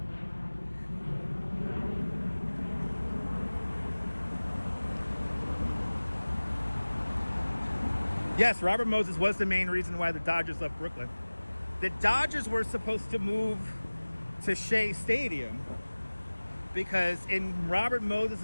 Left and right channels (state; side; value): inverted; both; correlation -1.00